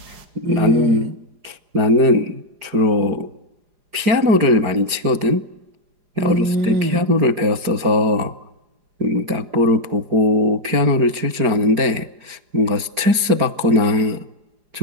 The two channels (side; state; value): left; late; 4.9 ms